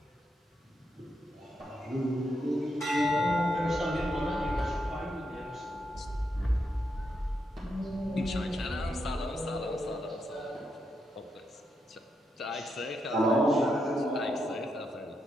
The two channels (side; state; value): both; normal; correlation 0.82